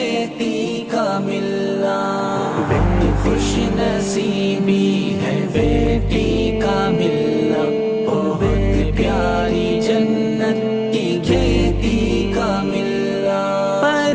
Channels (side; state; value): both; identical; correlation 1.00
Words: کا ملنا۔ خوش نصیبی ہے بیٹی کا ملنا، بہت پیاری جنت کی کھیتی کا ملنا۔